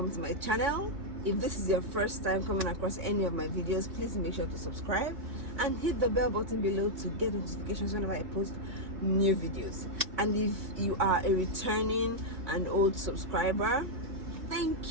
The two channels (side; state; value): left; late; 2.6 ms